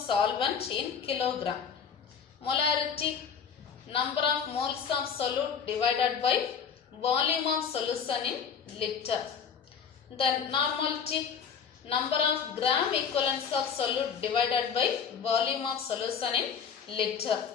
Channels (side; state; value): right; quieter; 6.9 dB